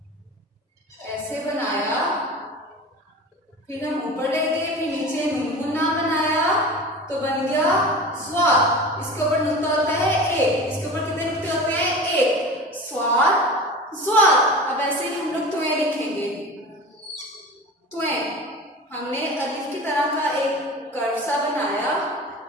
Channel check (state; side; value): normal; both; correlation 0.34